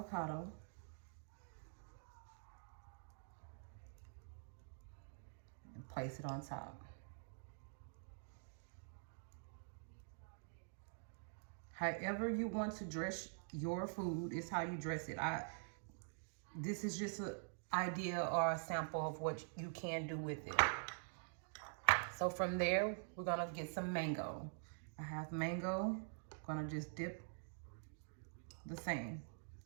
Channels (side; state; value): left; silent; digital silence